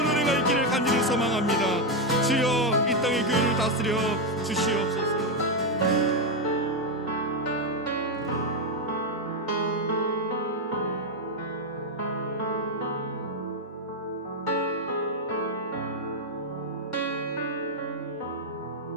은혜가 있기를 간절히 소망합니다. 주여, 이 땅의 교회를 다스려 주시옵소서.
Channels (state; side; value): normal; both; correlation 0.04